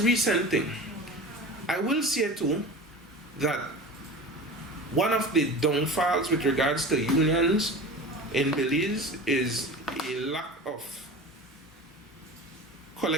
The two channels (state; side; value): normal; both; correlation 0.34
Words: thing. I will say too that one of the downfalls with regards to unions in Belize is a lack of